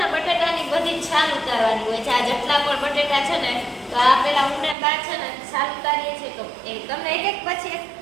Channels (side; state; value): left; drops out; at 4.8 s